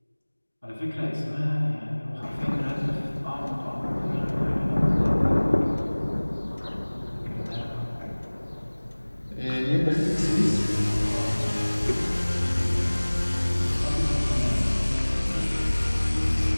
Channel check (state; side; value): inverted; both; correlation -1.00